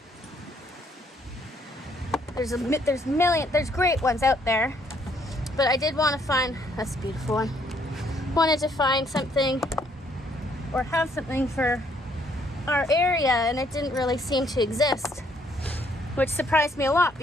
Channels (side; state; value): both; normal; correlation 0.68